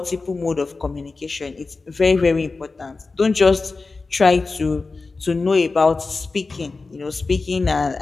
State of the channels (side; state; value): right; quieter; 3.9 dB